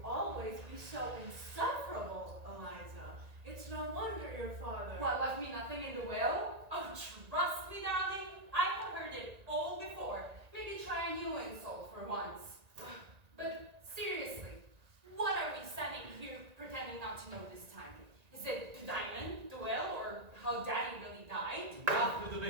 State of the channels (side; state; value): left; late; 1.9 ms